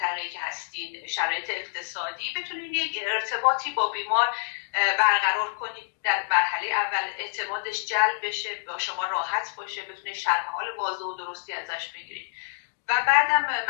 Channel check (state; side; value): silent; right; digital silence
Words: که هستین، شرایط اقتصادی، بتونید یک ارتباطی با بیمار برقرار کنید. در مرحله اول اعتمادش جلب بشه، با شما راحت باشه، بتونید شرح حال واضح و درستی ازش بگیرید و بعدم